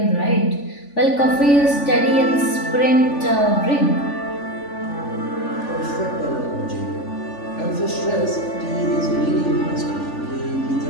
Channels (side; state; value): right; late; 3.5 ms